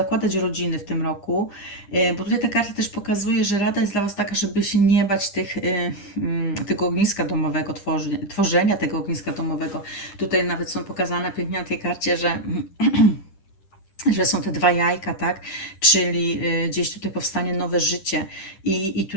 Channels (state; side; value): late; right; 10 ms